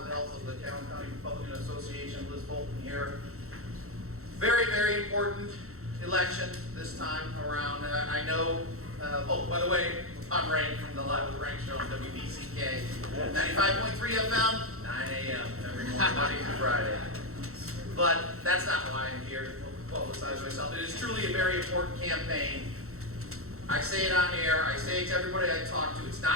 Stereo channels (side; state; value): left; late; 0.63 ms